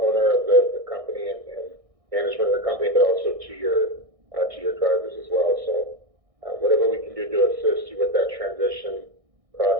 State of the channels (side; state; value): left; late; 1.6 ms